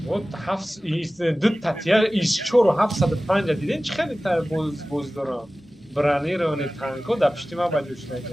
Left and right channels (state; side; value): normal; both; correlation 0.97